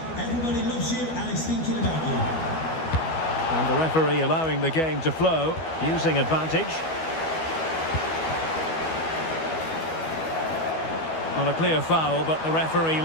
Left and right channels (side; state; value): right; late; 12 ms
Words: Everybody loves you and is thinking about you. And the referee allowing the game to flow, using advantage. On a clear foul, but the referee